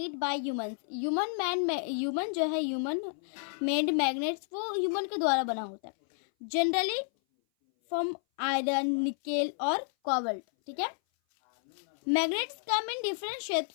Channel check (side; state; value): right; silent; 57 dB below the other